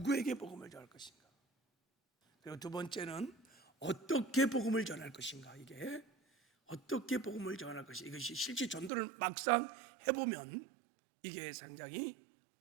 복음을 전할 것인가. 그리고 두 번째는 어떻게 복음을 전할 것인가. 이게 어떻게 복음을 전할 것인가. 이것이 실제 전도를 막상 해보면 이게 상당히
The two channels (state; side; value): drops out; left; at 8.9 s